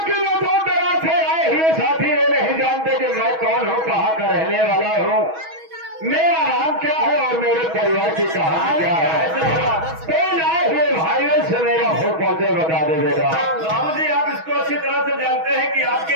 वो दो तरह से आए हुए साथी ये नहीं जानते कि मैं कौन हूँ, कहाँ का रहने वाला हूँ, मेरा नाम क्या है और मेरे परिवार की कहानी क्या है। तो आए हुए भाइयों से मेरा हो पहुंचे बता दे बेटा। बाबूजी आप इसको अच्छी तरह से जानते हैं कि आपके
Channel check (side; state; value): left; late; 6.2 ms